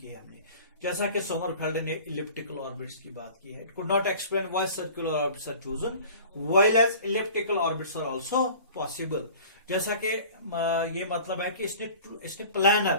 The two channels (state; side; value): inverted; both; correlation -0.44